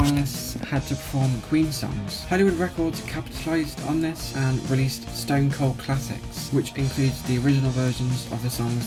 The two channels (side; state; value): both; identical; correlation 1.00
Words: had to perform Queen songs. Hollywood Records capitalised on this and released Stone Cold Classics, which includes the original versions of the songs